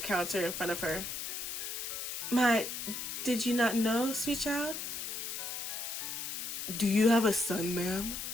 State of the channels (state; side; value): noise; left; hiss, 5 dB below the sound